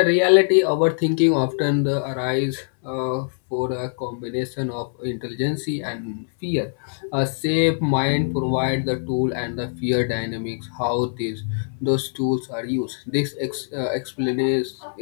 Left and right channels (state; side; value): silent; right; 63 dB below the other